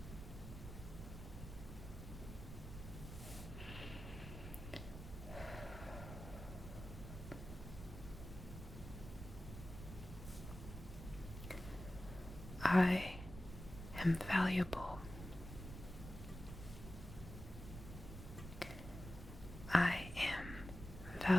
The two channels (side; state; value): right; noise; rumble, 10 dB below the sound